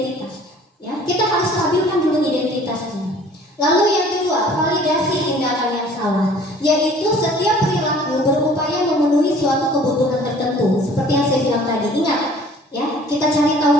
Ya, kita harus stabilkan dulu identitasnya. Lalu yang kedua, validasi tindakan yang salah, yaitu setiap perilaku berupaya memenuhi suatu kebutuhan tertentu. Seperti yang saya bilang tadi, ingat, ya, kita cari tahu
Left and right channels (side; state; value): both; normal; correlation 0.51